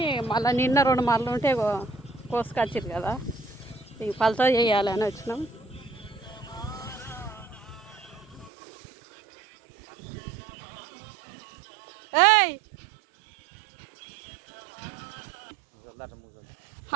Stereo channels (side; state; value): left; drops out; at 8.5 s